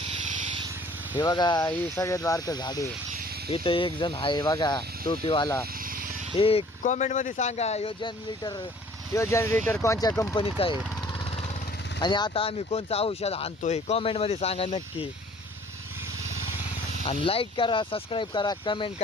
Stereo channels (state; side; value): normal; both; correlation 0.54